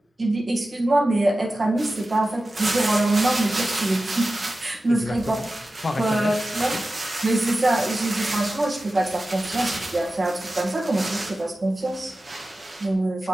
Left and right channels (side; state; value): both; normal; correlation 0.94